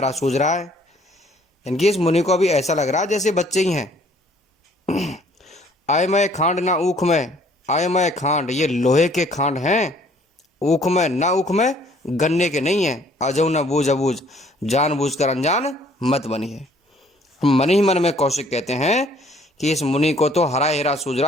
सूझ रहा है। इनकी इस मुनि को अभी ऐसा लग रहा है जैसे बच्चे ही हैं। आय मैं खांड ना ऊख में, आय मैं खांड, ये लोहे के खांड हैं, ऊख में ना, ऊख में गन्ने के नहीं है। अजऊ न बूझ अबूझ, जान बूझ कर अनजान मत बनिए। मन ही मन में कौशिक कहते हैं कि इस मुनि को तो हरा हेरा सूझ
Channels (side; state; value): both; normal; correlation 0.59